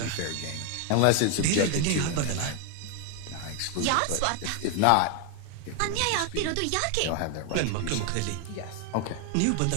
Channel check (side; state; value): both; different; correlation 0.01